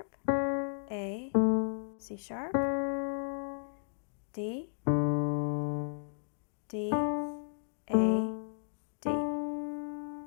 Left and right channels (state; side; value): silent; right; digital silence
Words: A, C sharp, D, D, A, D,